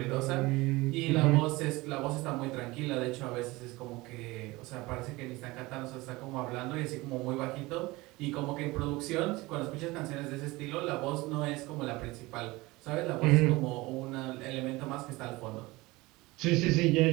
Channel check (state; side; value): quieter; left; 21.4 dB